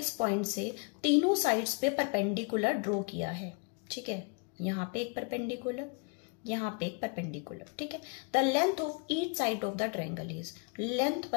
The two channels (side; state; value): right; quieter; 34.2 dB